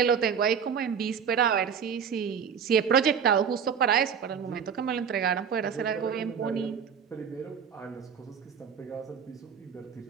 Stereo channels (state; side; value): quieter; left; 7.3 dB